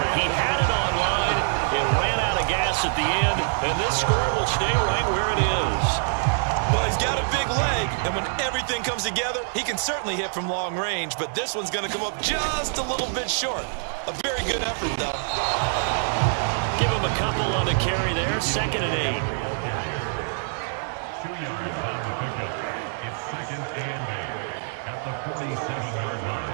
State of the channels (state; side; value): silent; left; digital silence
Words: He had it on line. It ran out of gas at the end. And this score will stay right where it is. Well, he's got a big leg, and when everything comes together, he can certainly hit from long range, but this one's going to come up just a little bit short. A very good effort, though. Give him a couple on the carry there. 2nd and 8. 2 yards on the pickup. It's 2nd and 8 at the 47-yard